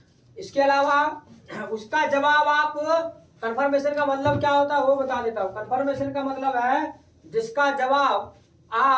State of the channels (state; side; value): identical; both; correlation 1.00